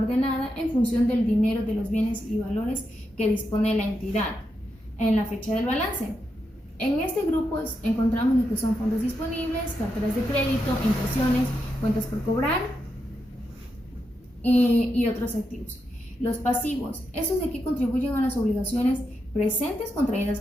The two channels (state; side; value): normal; both; correlation 0.85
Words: en función del dinero, de los bienes y valores que dispone la entidad en la fecha del balance. En este grupo encontramos lo que son fondos disponibles, carteras de crédito, impresiones, cuentas por cobrar y otros activos. Los pasivos. Estos de aquí contribuyen a las obligaciones presentes contraídas